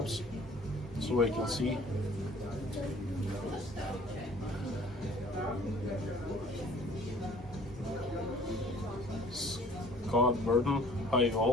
so I can see. Scott Burton, hi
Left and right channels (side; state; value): both; normal; correlation 0.52